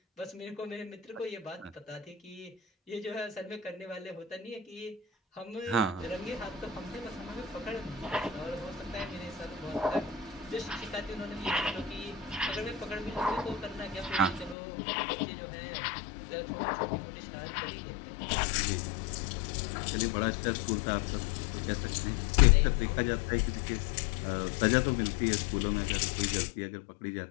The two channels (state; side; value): drops out; right; at 14.6 s